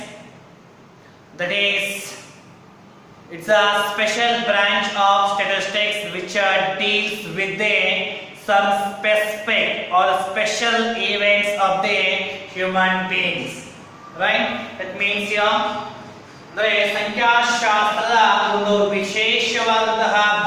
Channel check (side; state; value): both; identical; correlation 1.00